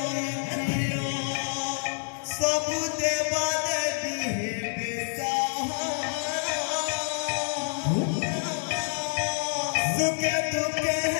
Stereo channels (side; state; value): right; silent; 60 dB below the other